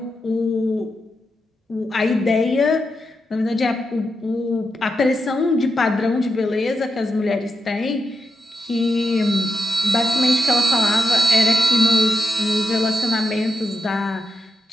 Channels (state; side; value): normal; both; correlation 0.86